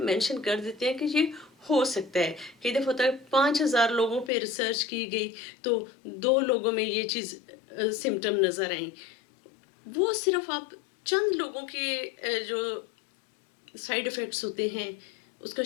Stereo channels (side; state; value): right; drops out; at 4.3 s